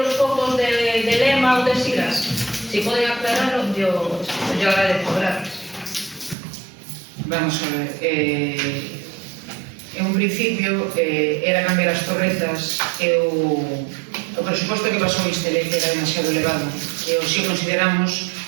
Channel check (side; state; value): left; drops out; at 6.4 s